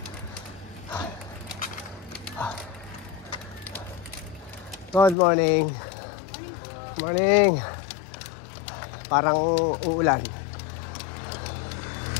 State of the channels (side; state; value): right; drops out; at 5.2 s